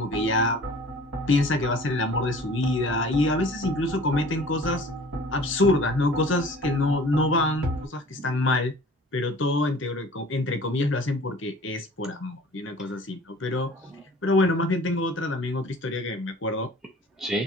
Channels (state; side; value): normal; both; correlation 0.47